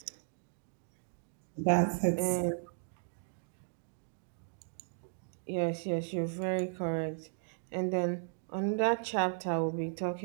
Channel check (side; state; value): left; silent; digital silence